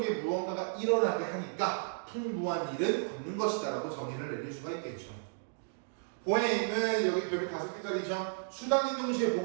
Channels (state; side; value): silent; left; digital silence